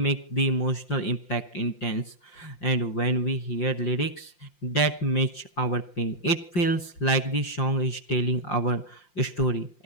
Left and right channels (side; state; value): right; late; 5.7 ms